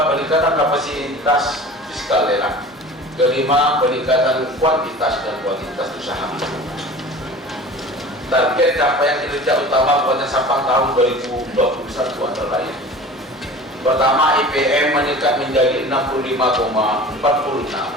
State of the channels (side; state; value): both; normal; correlation 0.40